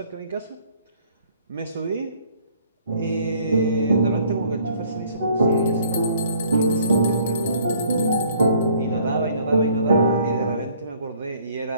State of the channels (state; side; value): inverted; both; correlation -0.59